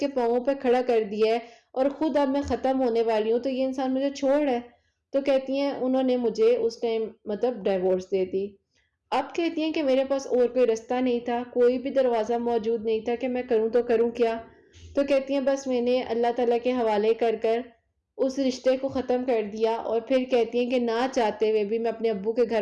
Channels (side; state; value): both; identical; correlation 1.00